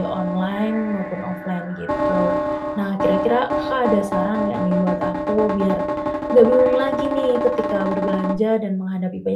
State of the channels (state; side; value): identical; both; correlation 1.00